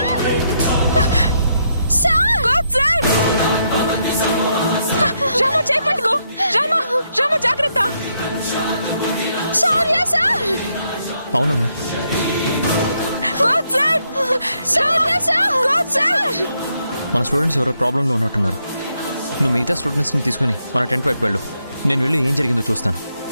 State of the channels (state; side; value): inverted; both; correlation -0.77